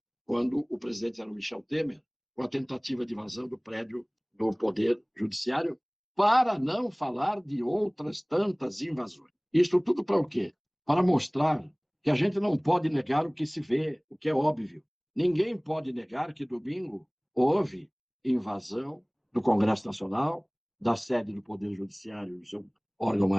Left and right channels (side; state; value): both; identical; correlation 1.00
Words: quando o presidente era o Michel Temer, com a tentativa de invasão do prédio do Poder Judiciário, para não falar de outras tantas invasões. Isto tudo para o quê? Para mostrar que a gente não pode negar o que se vê, o que é óbvio. Ninguém pode negar que domingo houve invasão do Congresso Nacional, da sede do Poder Judiciário, seu órgão